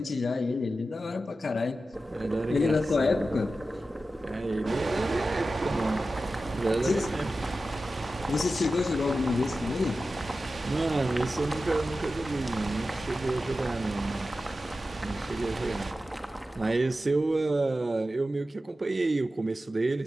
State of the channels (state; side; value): normal; both; correlation 0.93